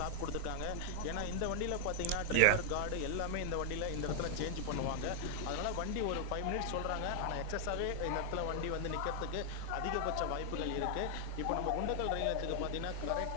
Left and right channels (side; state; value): both; different; correlation 0.00